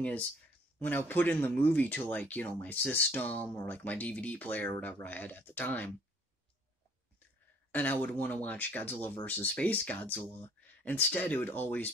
is, when I put in the movie to, like, my system or, like, my DVD player or whatever I had at the time, and I would want to watch Godzilla vs. Space Godzilla, instead it would always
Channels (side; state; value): both; normal; correlation 0.57